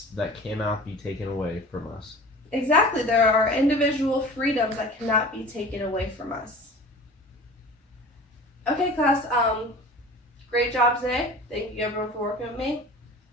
that cannot be taken away from us. Exactly. There are individual freedoms that cannot be taken away from us. Okay, class. Great job today. Thank you everyone for working with me.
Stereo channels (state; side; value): normal; both; correlation 0.40